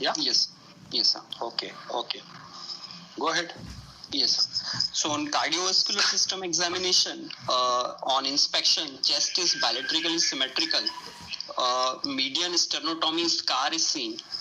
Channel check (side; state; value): both; identical; correlation 1.00